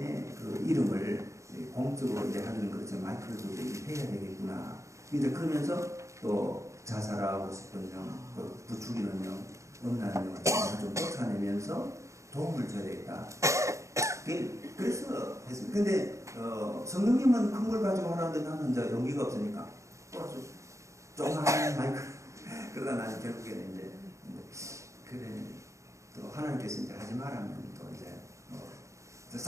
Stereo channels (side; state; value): left; late; 0.15 ms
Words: 그 이름을 공적으로 이제 하는 그렇죠. 마이크를 좀 해야 되겠구나. 근데 그러면서 또 자살하고 싶은 영, 부추기는 영, 음란한 영을 좀 쫓아내면서 도움을 줘야 되겠다. 그래서 했습니다. 근데 성령님은 큰 걸 가지고 하라는데 나는 이제 용기가 없으니까 또 아주 조그마한 마이크 그러다 나는 결국에는 이제 그래 또 하나님께서 이제 하지 말라면 또 이제